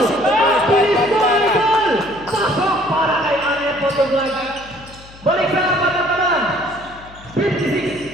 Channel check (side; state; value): left; noise; hum, 21 dB below the sound